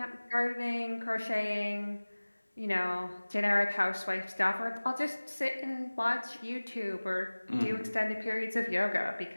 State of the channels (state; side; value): inverted; both; correlation -1.00